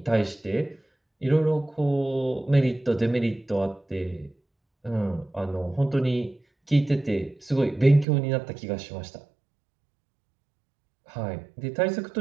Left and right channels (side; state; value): left; drops out; at 8.1 s